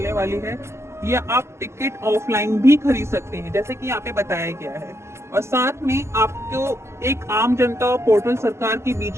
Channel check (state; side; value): late; left; 0.13 ms